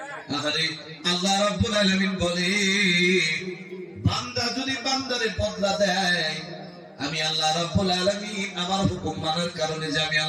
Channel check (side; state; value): both; identical; correlation 1.00